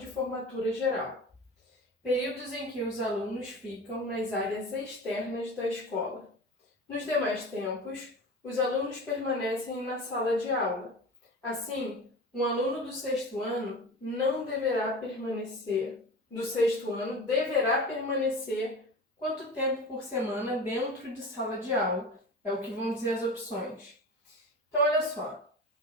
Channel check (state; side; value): normal; both; correlation 0.33